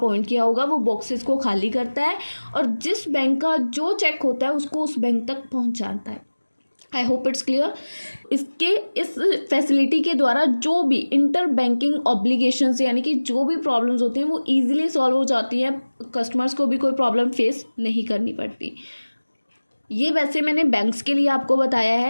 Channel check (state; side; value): inverted; both; correlation -1.00